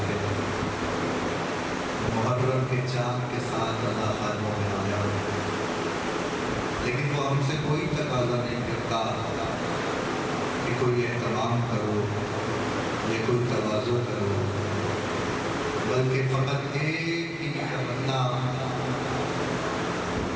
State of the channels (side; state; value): both; identical; correlation 1.00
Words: تھے محرم کے چاند کے ساتھ رضا خانوں میں آیا، لیکن وہ ہم سے کوئی تقاضا نہیں کرتا کہ کوئی اہتمام کرو یا کوئی تواضع کرو، بلکہ فقط ایک ہی تمنا